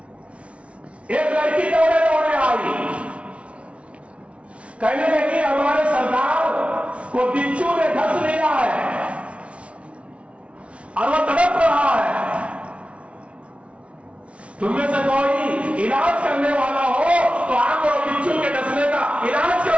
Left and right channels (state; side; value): late; left; 0.062 ms